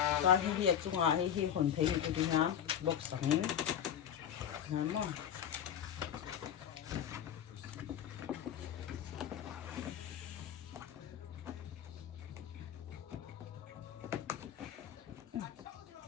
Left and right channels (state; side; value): quieter; right; 9.4 dB